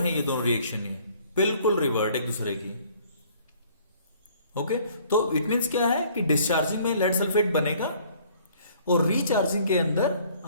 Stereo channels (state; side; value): inverted; both; correlation -0.57